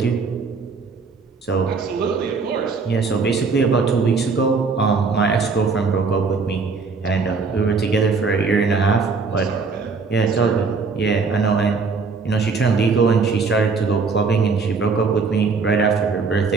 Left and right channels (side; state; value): left; quieter; 4.7 dB